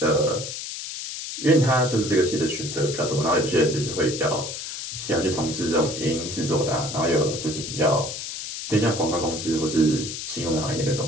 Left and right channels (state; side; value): noise; left; hiss, 7 dB below the sound